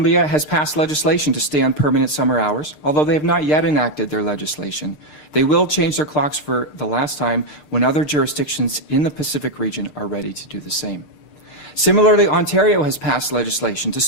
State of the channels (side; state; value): right; late; 6.6 ms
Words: has passed legislation to stay on permanent summer hours, although they have not yet enacted their legislation. They will change their clocks for the last time when other jurisdictions in the Pacific region are ready to do the same. Similarly, Ontario has passed legislation to